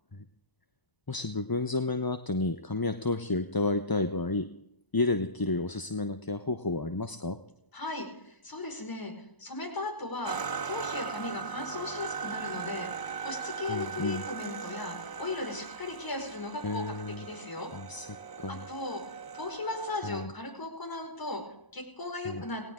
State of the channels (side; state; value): right; late; 1.0 ms